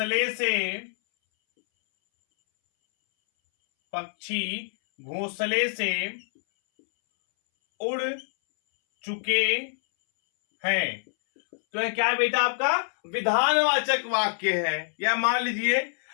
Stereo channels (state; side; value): silent; right; 61 dB below the other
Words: से उड़ चुके हैं। तो यह क्या है बेटा? आपका विधानवाचक वाक्य है। या मान लीजिए